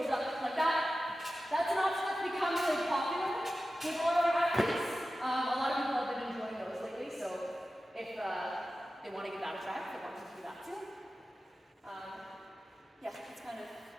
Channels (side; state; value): both; normal; correlation 0.94